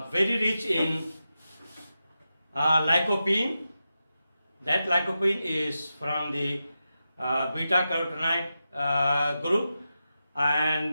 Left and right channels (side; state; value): both; inverted; correlation -0.90